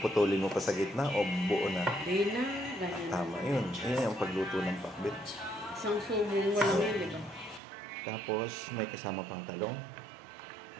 mo pa sa gitna o buo na? Hindi na. Tama yun. Yan yung pagluto ng pakbet. Isang subong mo lang yun, di ba? Tapos, may kasama pang talong.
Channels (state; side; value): drops out; left; at 7.6 s